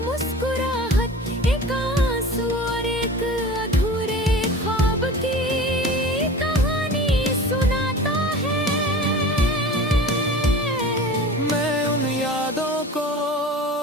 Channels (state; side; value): normal; both; correlation 0.37